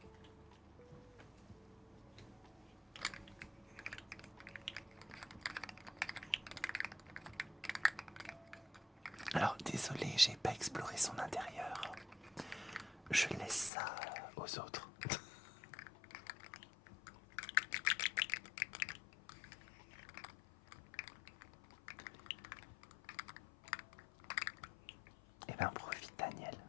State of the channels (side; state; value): right; drops out; at 13.7 s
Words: Alors, désolé, j'ai pas exploré son intérieur. Je laisse ça aux autres. Eh ben, profite, Daniel,